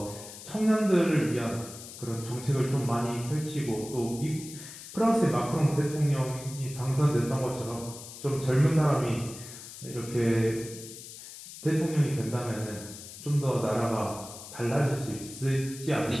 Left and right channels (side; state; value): left; noise; hiss, 14 dB below the sound